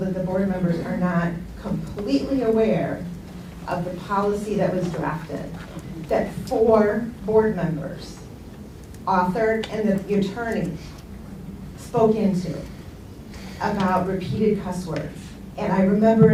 the board members are not completely aware of the policy that was drafted, that 4 board members authored and that the attorney spoke into about repeated cuss words. And I remember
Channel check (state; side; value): identical; both; correlation 1.00